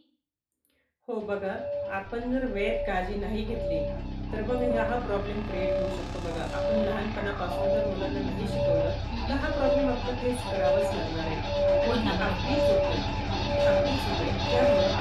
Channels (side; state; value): both; identical; correlation 1.00